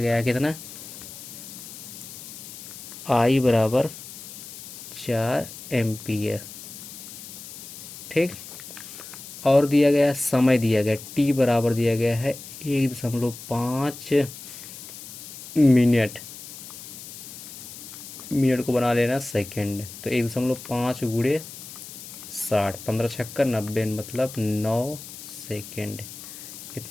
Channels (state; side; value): noise; left; hiss, 13 dB below the sound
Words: है कितना? I बराबर 4 एम्पियर। ठीक, और दिया गया समय, दिया गया T बराबर दिया गया है 1.5 मिनट। मिनट को बना लेना सेकंड, तो 1.5 गुणे 60, 15 छक्कर 90 मतलब 9 सेकंड।